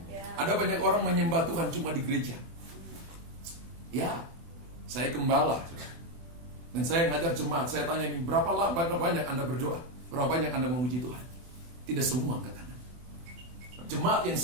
Ada banyak orang menyembah Tuhan cuma di gereja. Ya, saya gembala. Dan saya ngajar jemaat, saya tanya ini, berapa banyak Anda berdoa? Berapa banyak Anda memuji Tuhan? Tidak semua angkat tangan. Jemaat yang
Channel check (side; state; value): left; late; 24 ms